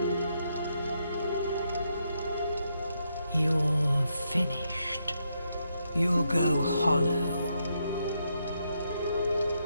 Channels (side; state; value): both; inverted; correlation -0.80